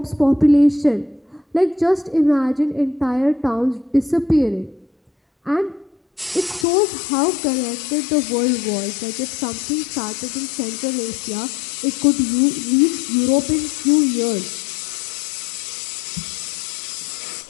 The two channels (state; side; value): drops out; right; at 6.7 s